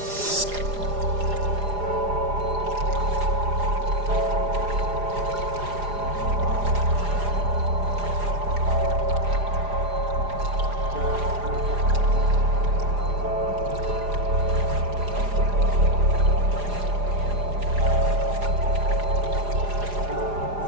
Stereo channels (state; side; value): late; left; 4.9 ms